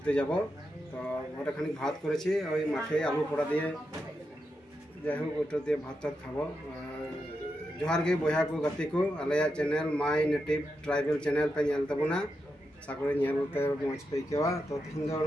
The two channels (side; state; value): both; normal; correlation 0.86